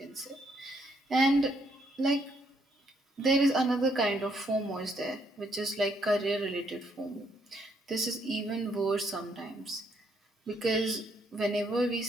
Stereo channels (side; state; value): both; normal; correlation 0.72